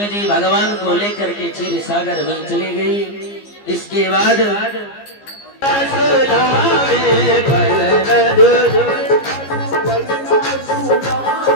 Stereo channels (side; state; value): right; late; 15 ms